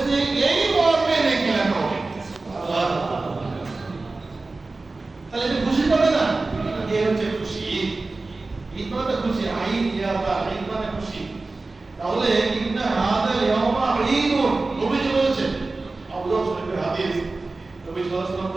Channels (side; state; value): left; quieter; 3.4 dB